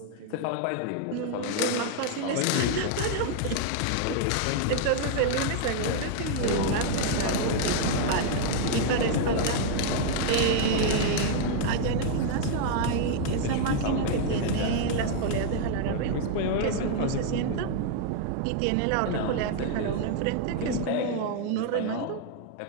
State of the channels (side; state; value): both; different; correlation 0.00